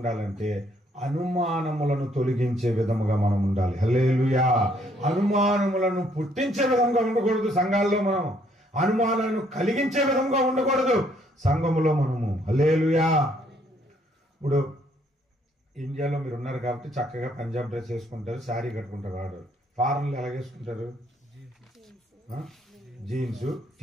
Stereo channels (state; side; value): normal; both; correlation 0.67